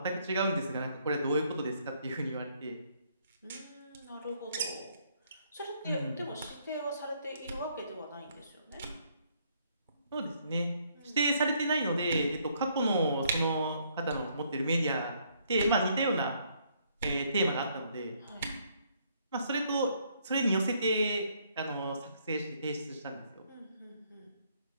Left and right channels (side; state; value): both; inverted; correlation -0.68